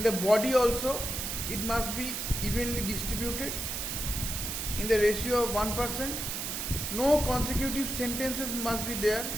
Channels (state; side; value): noise; right; hiss, 3 dB below the sound